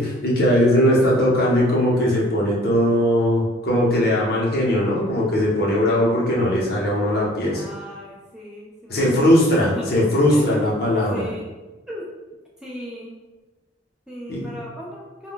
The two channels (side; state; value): both; normal; correlation 0.54